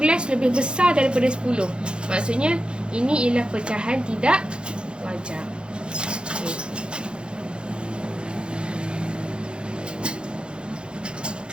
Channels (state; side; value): late; left; 0.053 ms